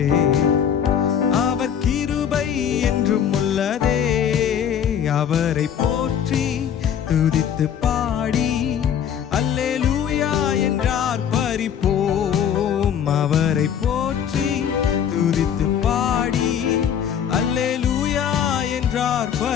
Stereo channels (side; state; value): right; quieter; 8.7 dB